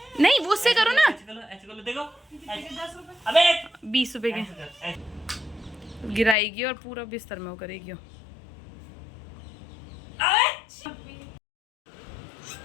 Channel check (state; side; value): drops out; right; at 6.4 s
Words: नहीं वो उससे करो ना। ऐसे करो देखो। अबे 20 रुपए के गिराएगी और पूरा बिस्तर में वो करेगी।